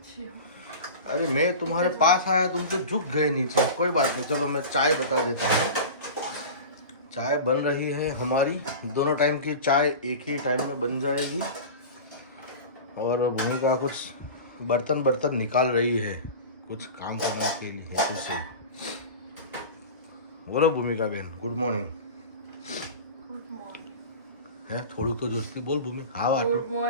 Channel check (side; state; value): both; inverted; correlation -0.32